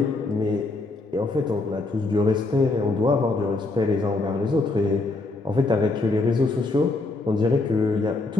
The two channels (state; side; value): quieter; right; 3.3 dB